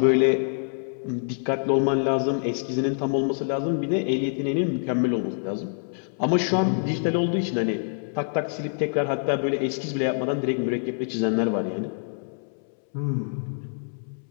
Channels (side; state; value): right; silent; 61 dB below the other